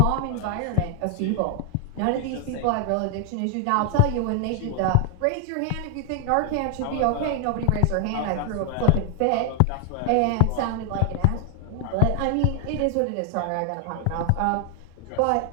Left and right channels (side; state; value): both; different; correlation 0.00